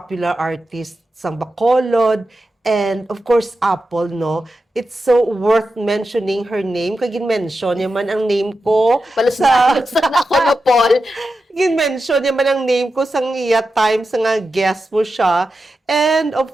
artist, sang Bacolod, and of course, Apple, no? It's so worth mentioning her name. Kaya gin-mention yaman ang name ko Palusna ako no, Paul. gin-mention yaman ang name ko sa iya time sa nga guest mo siya. And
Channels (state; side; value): normal; both; correlation 0.90